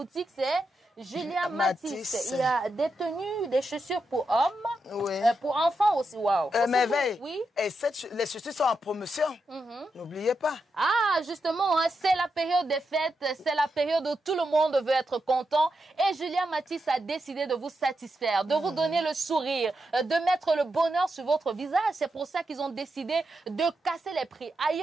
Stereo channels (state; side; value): normal; both; correlation 0.86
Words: c'est Julia Matisse. Il y a des tenues, des chaussures pour hommes, pour enfants aussi. Waouh. Merveille. Oui. Et les chaussures sont en promotion. N'oubliez pas. Ah, justement, c'est la période des fêtes, c'est la période où tout le monde veut être content. Et Julia Matisse a décidé de vous satisfaire, de vous donner le sourire, de mettre le bonheur sur votre visage. C'est pour ça qu'ils ont décidé de casser les prix.